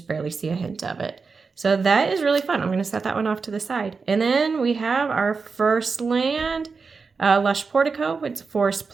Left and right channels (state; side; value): quieter; left; 4.8 dB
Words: barely see a hint of it. So that is really fun. I'm going to set that one off to the side. And then we have our first land, Lush Portico with Forest